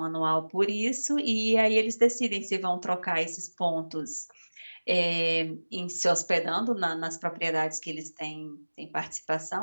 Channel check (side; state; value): both; inverted; correlation -1.00